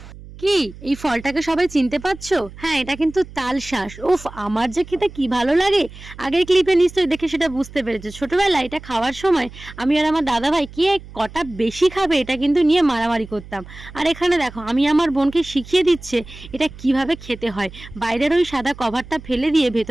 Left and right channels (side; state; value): right; noise; hum, 17 dB below the sound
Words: কি এই ফলটাকে সবাই চিনতে পারছো? হ্যাঁ, এটা কিন্তু তালশাঁস। উফ, আমার যে খেতে কি ভালো লাগে। আগের ক্লিপে নিশ্চয়ই দেখে সেটা বুঝতে পেরেছো। ছোটবেলায় এটা খাওয়ার সময় আমি আর আমার দাদা ভাই কে কটা বেশি খাবে এটা কিন্তু নিয়ে মারামারি করতাম। আর এখানে দেখো আমি আমার বোনকে শিখিয়ে দিচ্ছে এটা কিভাবে খেতে হয়। বাইরের ওই সাদা কভারটা ফেলে দিয়ে